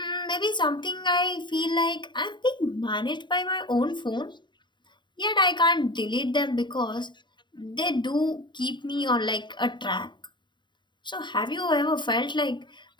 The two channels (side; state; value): right; late; 0.22 ms